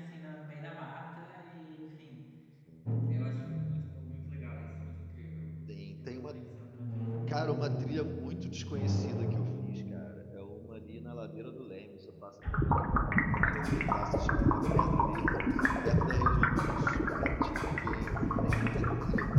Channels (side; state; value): both; identical; correlation 1.00